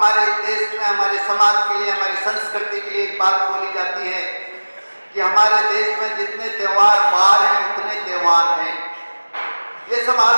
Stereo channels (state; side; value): inverted; both; correlation -1.00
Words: देश में, हमारे समाज के लिए, हमारी संस्कृति के लिए एक बात बोली जाती है कि हमारे देश में जितने त्योहार बार हैं उतने त्योहार हैं। ये सब